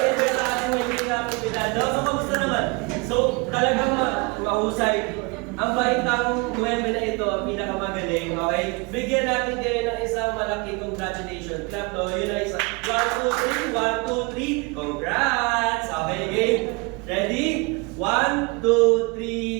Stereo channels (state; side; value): quieter; left; 28.8 dB